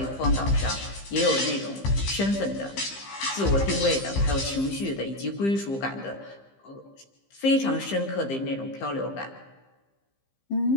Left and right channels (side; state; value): right; late; 15 ms